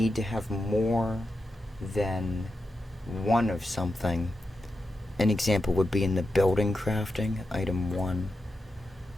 to have more than one of something, an example would be in the building crafting, item 1.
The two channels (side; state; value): both; normal; correlation 0.89